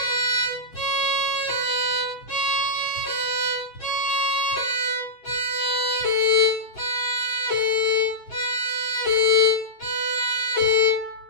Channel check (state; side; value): late; right; 7.8 ms